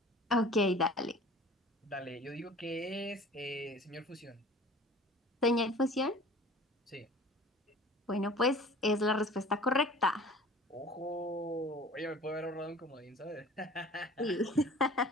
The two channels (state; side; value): normal; both; correlation 0.45